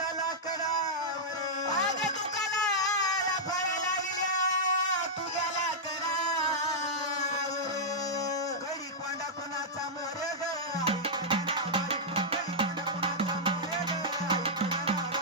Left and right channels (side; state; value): both; normal; correlation -0.08